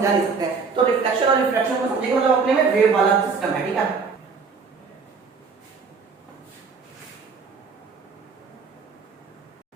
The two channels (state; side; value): quieter; left; 5.1 dB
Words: नहीं सकते हैं। तो रिफ्लेक्शन और रिफ्रैक्शन को समझेंगे, मतलब अपने में वेव वाला सिस्टम है, ठीक है।